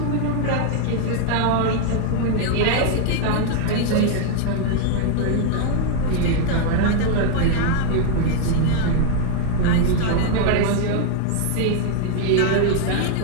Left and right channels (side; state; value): both; different; correlation 0.00